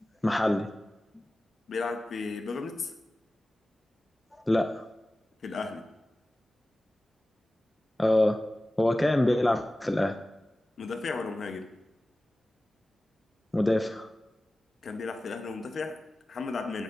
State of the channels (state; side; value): normal; both; correlation 0.96